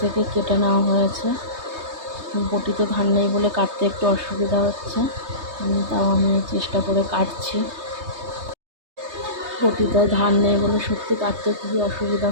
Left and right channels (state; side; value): late; left; 3.2 ms